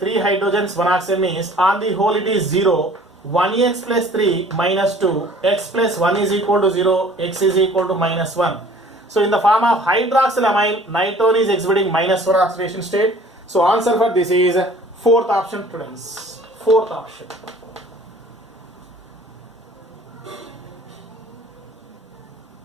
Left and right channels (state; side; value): normal; both; correlation 0.51